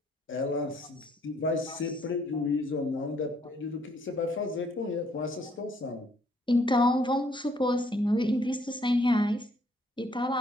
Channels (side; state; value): both; normal; correlation 0.66